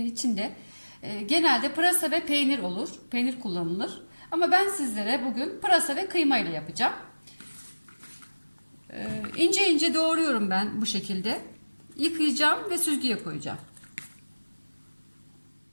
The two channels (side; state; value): both; inverted; correlation -1.00